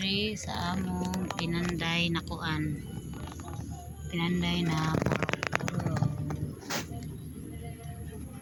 sa among pinanday na kuan. Pinanday na puro.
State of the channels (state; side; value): identical; both; correlation 1.00